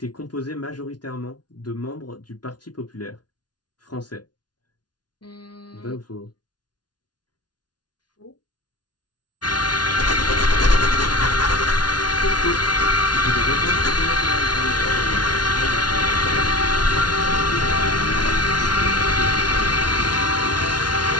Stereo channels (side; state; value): right; late; 0.70 ms